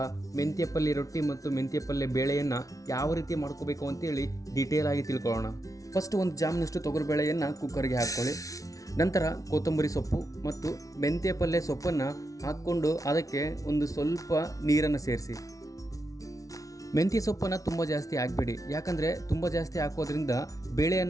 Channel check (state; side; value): late; right; 0.17 ms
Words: ಮೆಂತ್ಯ ಪಲ್ಯ ರೊಟ್ಟಿ ಮತ್ತು ಮೆಂತ್ಯ ಪಲ್ಯ ಬೇಳೆಯನ್ನು ಯಾವ ರೀತಿ ಮಾಡ್ಕೋಬೇಕು ಅಂತೇಳಿ ಡೀಟೇಲ್ ಆಗಿ ತಿಳ್ಕೊಳ್ಳೋಣ. ಫಸ್ಟ್ ಒಂದು ಜಾಮ್ನಷ್ಟು ತೊಗರಿಬೇಳೆಯನ್ನು ಕುಕ್ಕರ್ಗೆ ಹಾಕ್ಕೊಳ್ಳಿ. ನಂತರ ಕೊತ್ತಂಬರಿ ಸೊಪ್ಪು ಮತ್ತು ಮೆಂತ್ಯ ಪಲ್ಯ ಸೊಪ್ಪನ್ನು ಹಾಕ್ಕೊಂಡು ಅದಕ್ಕೆ ಒಂದು ಸ್ವಲ್ಪ ನೀರನ್ನು ಸೇರಿಸಿ. ಮೆಂತ್ಯ ಸೊಪ್ಪನ್ನು ತುಂಬ ಜಾಸ್ತಿ ಹಾಕಬೇಡಿ, ಯಾಕಂದರೆ ತುಂಬ ಜಾಸ್ತಿ ಹಾಕೋದ್ರಿಂದ ಬೇಳೆ